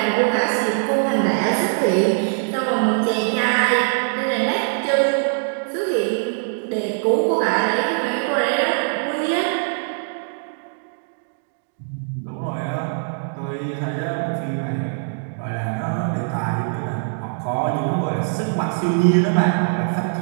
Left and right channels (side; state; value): left; silent; digital silence